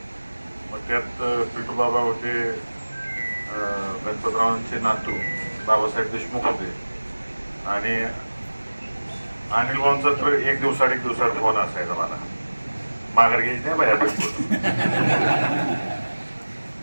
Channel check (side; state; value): both; inverted; correlation -1.00